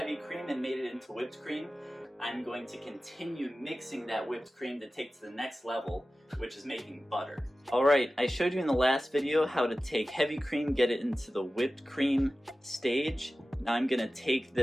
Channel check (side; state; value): both; normal; correlation 0.95